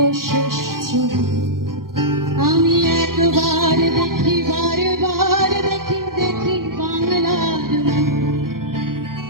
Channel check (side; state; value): left; late; 0.92 ms